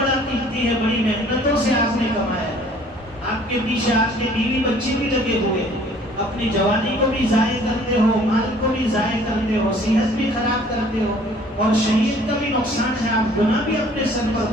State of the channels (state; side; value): normal; both; correlation 0.55